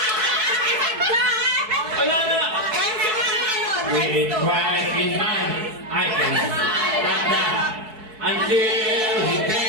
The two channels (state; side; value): late; left; 4.6 ms